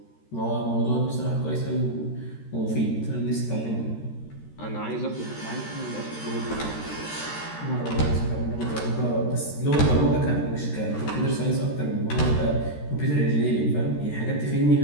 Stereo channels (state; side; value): late; right; 13 ms